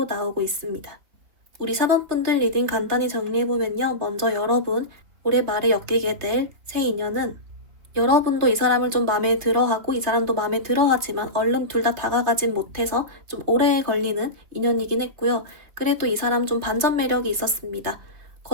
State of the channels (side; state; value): left; late; 3.3 ms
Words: 나오고 있습니다. 우리 4번분들 리딩 간단히 정리해보면요. 먼저 여러분, 올해 말에 엮이게 될 새 인연은 여러분도 이 사람을 좀 마음에 들어하고 이 사람도 마음에 들어하지만 얼른 둘 다 다가가진 못해서 좀 오래 걸리는 인연이긴 했고요. 그래도 이 사람 좀 반전 매력이 있었습니다.